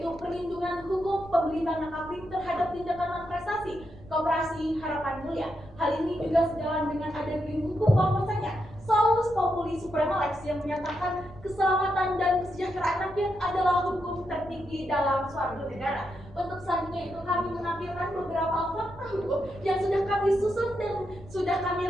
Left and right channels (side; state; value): right; noise; rumble, 19 dB below the sound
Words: perlindungan hukum pembeli tanah kafling terhadap tindakan non-prestasi Koperasi Harapan Mulia. Hal ini juga sejalan dengan ada payung hukum bahwasanya Salus Populi Suprema Lex yang menyatakan keselamatan dan kesejahteraan rakyat adalah hukum tertinggi dalam suatu negara. Untuk selanjutnya itu kami menampilkan beberapa fakta hukum yang sudah kami susun dan sudah kami